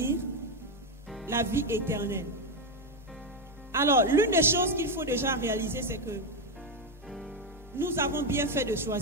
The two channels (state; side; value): normal; both; correlation 0.07